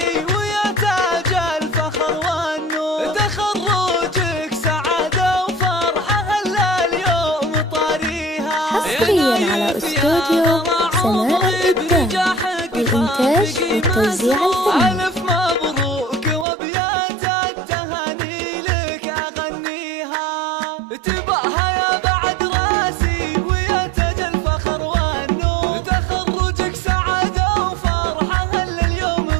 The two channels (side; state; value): left; drops out; at 16.4 s